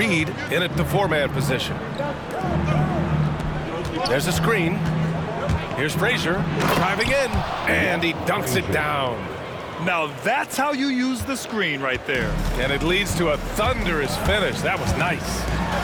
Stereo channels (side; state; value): both; identical; correlation 1.00